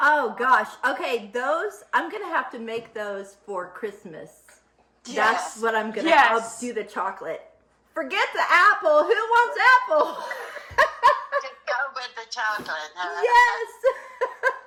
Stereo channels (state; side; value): identical; both; correlation 1.00